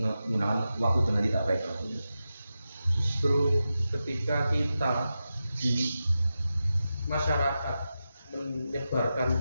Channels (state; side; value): inverted; both; correlation -0.91